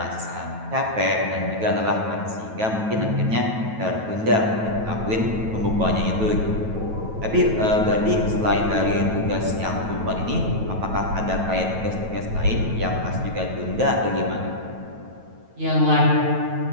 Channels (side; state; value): left; late; 9.2 ms